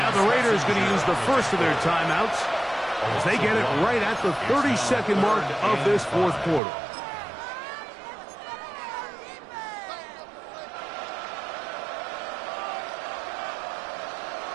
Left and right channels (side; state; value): left; drops out; at 6.6 s